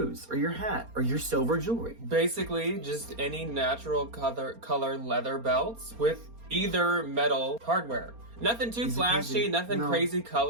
or your hat, or your silver jewelry. Basically, just any natural color leather belts with either metal hardware. Nothing too flashy, nothing crazy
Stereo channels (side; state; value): left; late; 4.3 ms